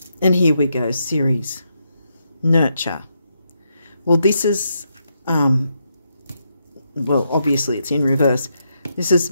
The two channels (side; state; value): both; inverted; correlation -0.81